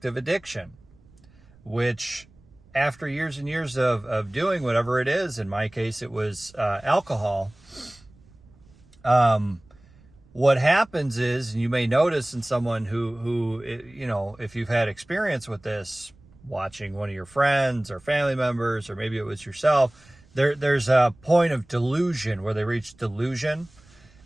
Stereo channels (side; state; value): right; noise; rumble, 27 dB below the sound